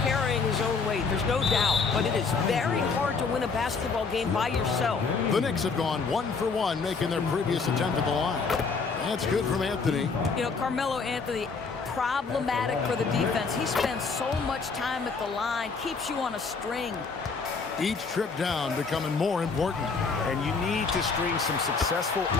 carrying his own weight, there's no doubt, but it is very hard to win a basketball game by yourself. The Knicks have gone 1 for 1, making their previous attempt at the line. That's good from Anthony. You know, Carmelo Anthony, problematic for the defense. He spends so much time at the line, keeps you on a string. Each trip down becoming more important. And you need to string some successful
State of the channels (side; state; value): right; quieter; 4.8 dB